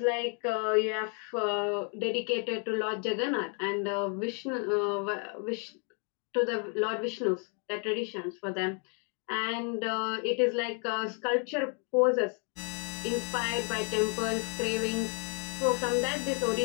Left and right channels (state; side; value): quieter; right; 39.8 dB